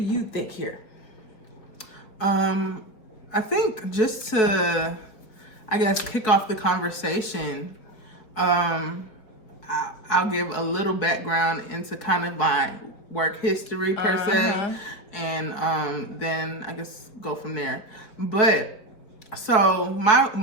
you think here? I think just to, I guess, kick off the conversation, I'll give a little background into kind of my work history per se, and then I guess go from there. But so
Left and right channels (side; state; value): right; late; 4.6 ms